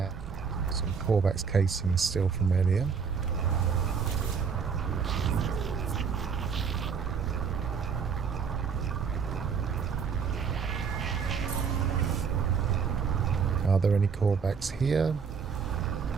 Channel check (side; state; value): left; quieter; 6.2 dB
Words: some Corvax casings still from earlier. Are there any callbacks here?